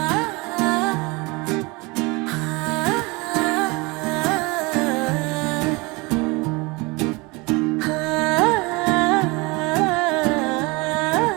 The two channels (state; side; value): quieter; left; 25.8 dB